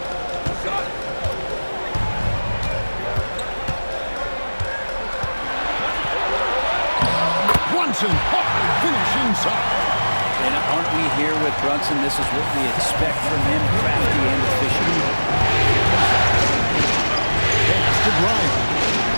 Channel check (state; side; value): inverted; both; correlation -1.00